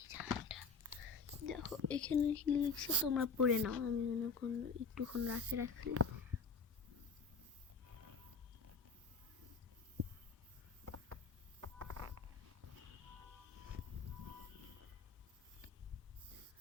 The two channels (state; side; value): quieter; right; 4.7 dB